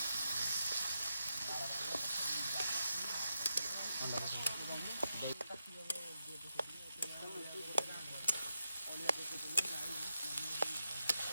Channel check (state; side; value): inverted; both; correlation -0.86